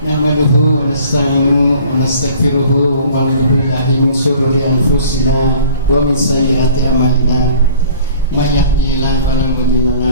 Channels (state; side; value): inverted; both; correlation -0.49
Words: nahmaduhu wa nasta'inuhu wa nastaghfiruhu wa na'udzu billahi min shururi anfusina wa min sayyiati a'malina may yahdihillahu fala mudilla